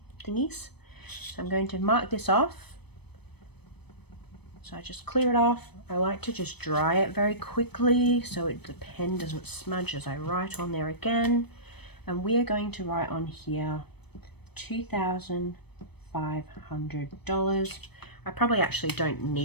thingies. So I'm going to mark this off. So I just clear it off. I like to just dry it very quickly so the pen doesn't smudge as I write on there again. And we are going to write on here $2,500. I probably actually don't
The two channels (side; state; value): right; late; 0.98 ms